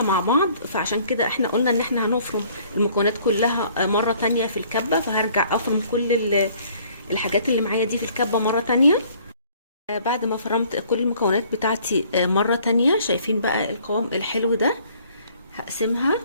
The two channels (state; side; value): inverted; both; correlation -0.58